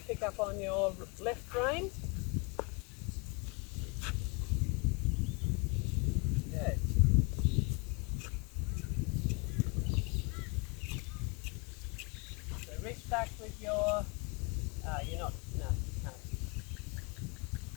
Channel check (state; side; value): quieter; right; 30.7 dB